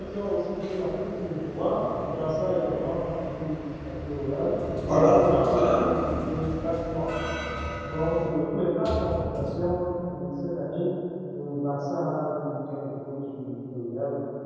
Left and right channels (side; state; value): both; identical; correlation 1.00